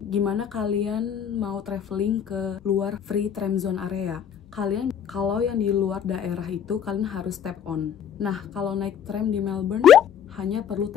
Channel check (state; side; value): quieter; right; 8.6 dB